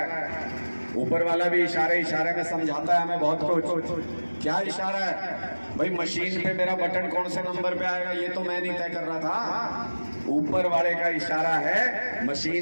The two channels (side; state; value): both; inverted; correlation -1.00